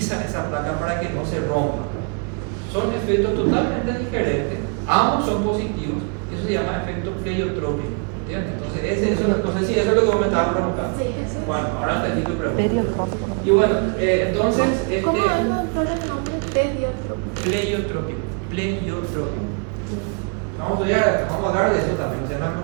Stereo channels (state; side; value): quieter; left; 35.4 dB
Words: esa placa para que no se rompa. Son efectos totalmente diferentes, ambos son positivos, eso se llama efecto pleiotrópico, ¿entiendes? Entonces, no sé si eso es lo que vos me estabas preguntando. Sí, sí. Bueno, ahora entendí tu pregunta. Periotrópico. Y bueno, entonces, ¿Cómo es el nombre? pleiotrópico. Vamos a hablar de eso también, no se van a